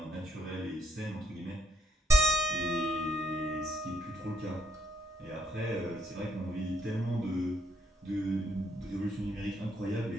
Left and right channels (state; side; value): normal; both; correlation 0.72